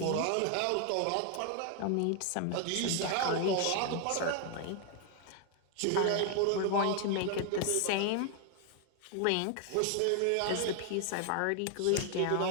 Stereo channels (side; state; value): both; different; correlation 0.00